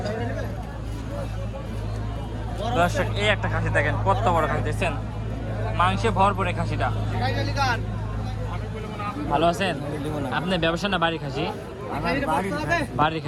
দর্শক এই একটা খাসি দেখেন কত বড় খাসি দেখছেন, মাংসে ভরপুরে খাসিটা। ভালো আছেন? আপনি ব্যবসা না বাড়ি খাসি? বাড়ির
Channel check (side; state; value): both; identical; correlation 1.00